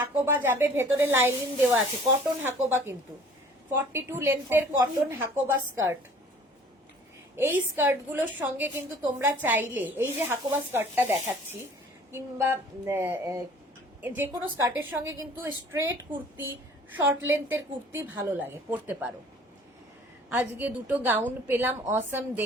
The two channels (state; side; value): normal; both; correlation 0.51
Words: যাবে, ভেতরে লাইনিং দেওয়া আছে, কটন হাকোবা কিন্তু। 42 লেন্থের কটন হাকোবা স্কার্ট। এই স্কার্টগুলোর সঙ্গে কিন্তু তোমরা চাইলে, এই যে হাকোবা স্কার্টটা দেখাচ্ছি, কিংবা যে কোনো স্কার্টের সঙ্গে কিন্তু স্ট্রেট কুর্তি, শর্ট লেন্থের কুর্তি ভালো লাগে, পরতে পারো। আজকে দুটো গাউন পেলাম, অসম